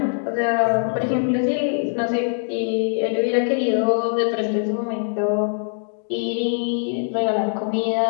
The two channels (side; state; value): right; silent; digital silence